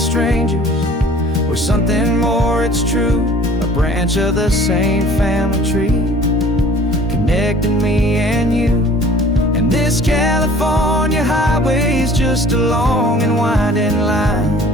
we're something more, it's true, a branch of the same family tree, connecting me and you. And this California highway is just a long and winding line,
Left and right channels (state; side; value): normal; both; correlation 0.50